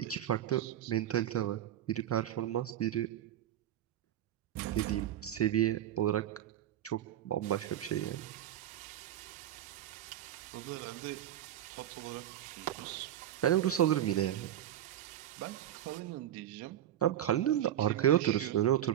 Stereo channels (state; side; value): quieter; left; 11.6 dB